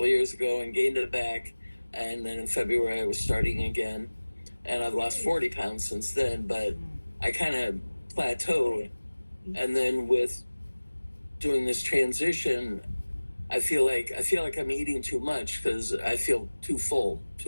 of years ago and gained it back. And then in February, I was starting again. And I've lost 40 pounds since then, but I kind of plateaued. And then with doing this transition, I feel like I'm eating too much because I feel too full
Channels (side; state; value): both; inverted; correlation -1.00